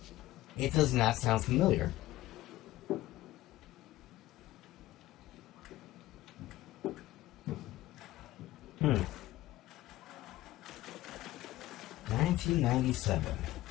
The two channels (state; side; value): quieter; right; 16.2 dB